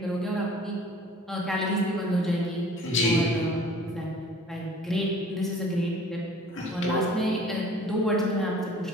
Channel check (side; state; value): both; normal; correlation 0.49